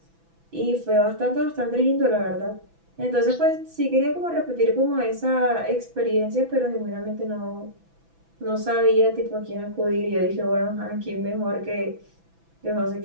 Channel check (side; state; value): left; late; 6.0 ms